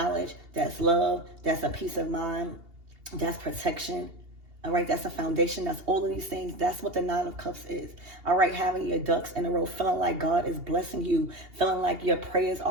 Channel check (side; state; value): left; late; 2.8 ms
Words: that's love, that's a peace of mind, that's protection. All right, that's a foundation. That's all of these things. That's what the Nine of Cups is. All right, having your ducks in a row, feeling like God is blessing you, feeling like your prayers